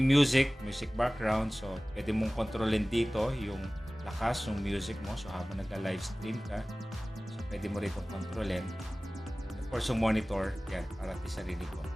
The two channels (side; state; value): both; normal; correlation 0.98